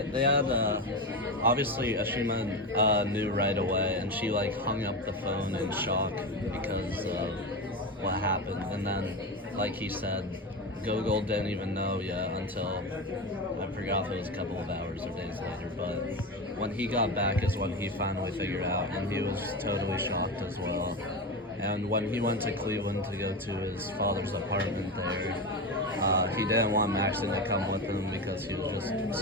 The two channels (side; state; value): both; normal; correlation 0.20